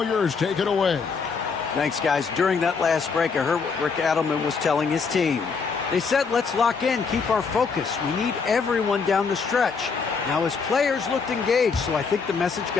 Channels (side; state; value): right; quieter; 5.3 dB